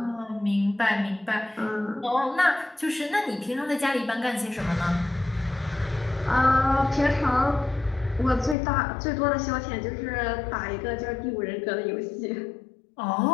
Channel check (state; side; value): drops out; right; at 8.6 s